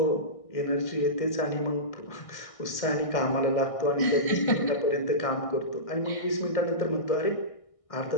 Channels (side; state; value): right; late; 1.6 ms